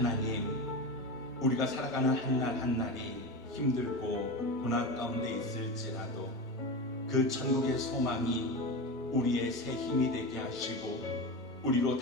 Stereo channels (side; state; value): both; normal; correlation 0.23